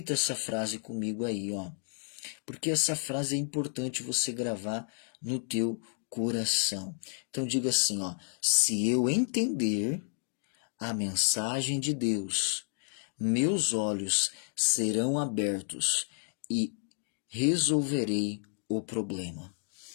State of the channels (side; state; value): right; silent; 57 dB below the other